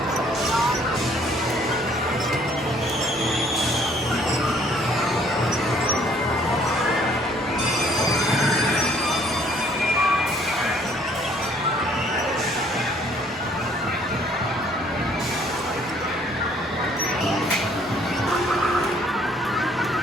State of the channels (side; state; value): both; normal; correlation 0.61